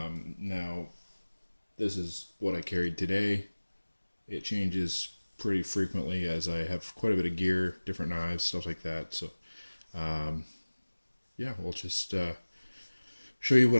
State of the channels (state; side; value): inverted; both; correlation -1.00